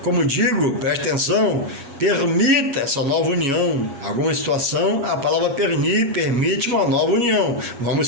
como digo, preste atenção, permita essa nova união. Alguma situação, a palavra permite uma nova união.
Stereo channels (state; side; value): late; left; 7.4 ms